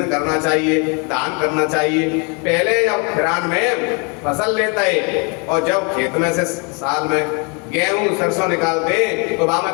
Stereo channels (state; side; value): quieter; right; 34.1 dB